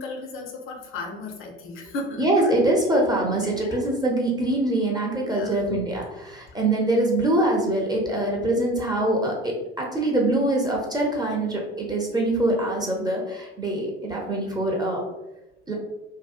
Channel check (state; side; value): normal; both; correlation 0.39